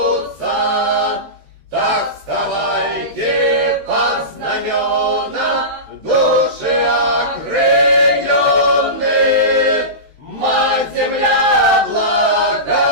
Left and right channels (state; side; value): late; left; 13 ms